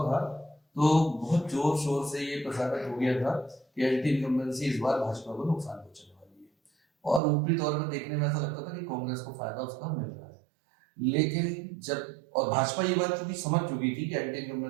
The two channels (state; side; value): drops out; left; at 7.2 s